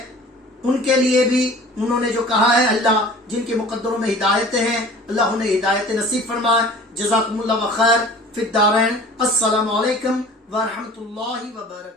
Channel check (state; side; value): normal; both; correlation 0.45